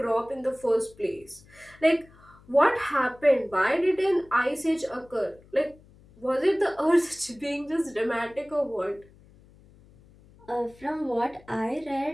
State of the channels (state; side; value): noise; left; hum, 26 dB below the sound